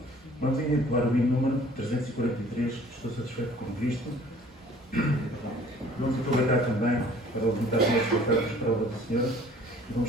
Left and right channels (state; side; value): normal; both; correlation 0.52